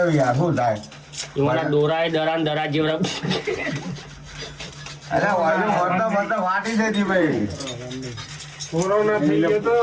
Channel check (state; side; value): identical; both; correlation 1.00